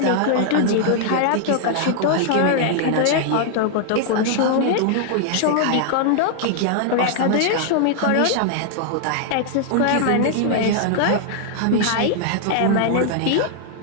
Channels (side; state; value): both; different; correlation -0.01